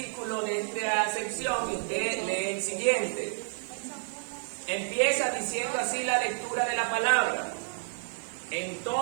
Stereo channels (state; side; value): silent; left; digital silence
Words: de esta sección y usted lee el siguiente. Empieza diciendo así la lectura de la palabra.